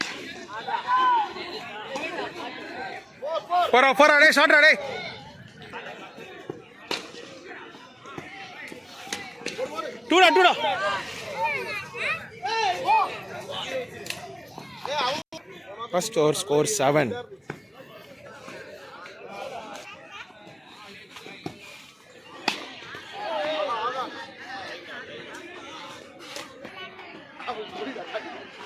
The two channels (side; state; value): both; identical; correlation 1.00